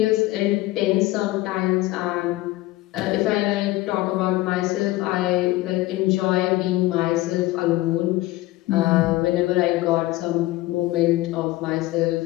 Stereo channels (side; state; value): right; quieter; 18.0 dB